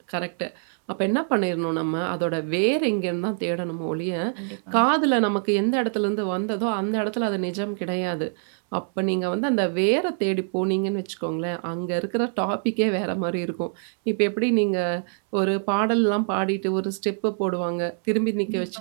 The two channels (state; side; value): silent; left; 62 dB below the other